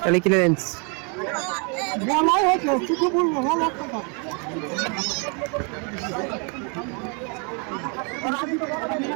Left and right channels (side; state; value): left; quieter; 36.7 dB